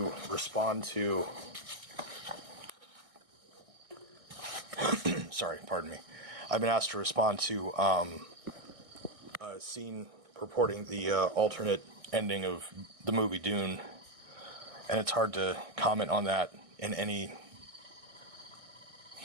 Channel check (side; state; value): left; late; 1.6 ms